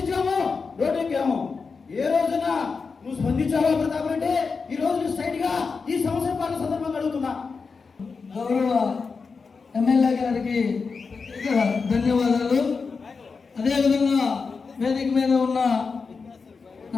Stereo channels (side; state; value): right; quieter; 4.9 dB